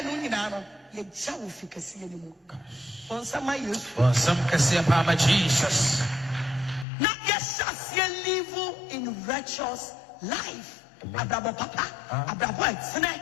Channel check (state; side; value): drops out; right; at 6.9 s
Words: you shall see anymore. On some my use, for some Cassia Papa Jesus. Not yes, Sacks live in righteous life. Abrabo Papa, Abrabo, Snake.